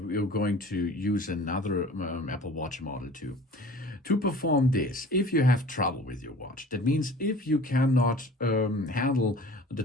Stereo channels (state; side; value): normal; both; correlation 0.44